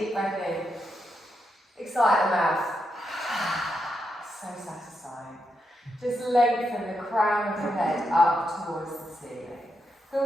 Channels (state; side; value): normal; both; correlation 0.83